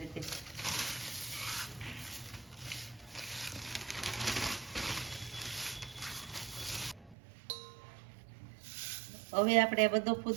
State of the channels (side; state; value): left; drops out; at 7.2 s